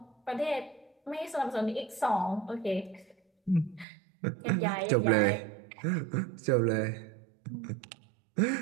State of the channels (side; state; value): left; drops out; at 3.9 s